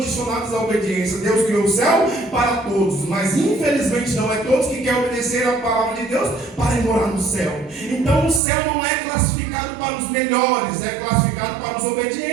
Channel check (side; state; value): left; drops out; at 8.4 s